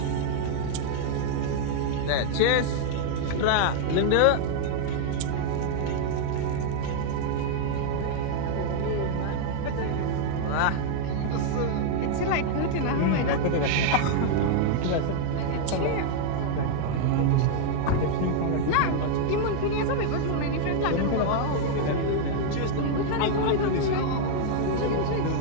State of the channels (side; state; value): both; different; correlation 0.00